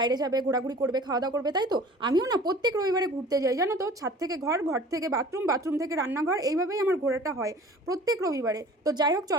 যাবে, ঘোরাঘুরি করবে, খাওয়া দাওয়া করবে, তাই তো? আমিও না প্রত্যেক রবিবারে ঘুরতে যাই, জানো তো। ছাদ থেকে ঘর, ঘর থেকে বাথরুম, বাথরুম থেকে রান্নাঘর, এইভাবেই আমার ঘোরাটা হয় প্রত্যেক রবিবারে। তো যাই হোক,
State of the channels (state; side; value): normal; both; correlation 0.45